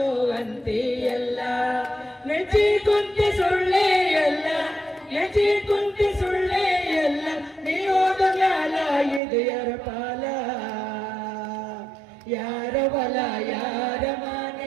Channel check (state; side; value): drops out; left; at 9.2 s